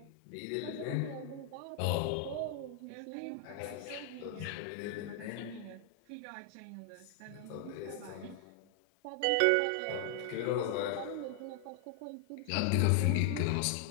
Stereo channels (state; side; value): different; both; correlation 0.00